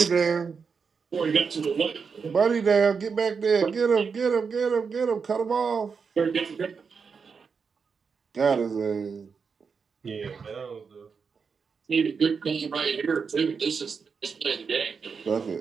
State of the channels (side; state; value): left; quieter; 5.6 dB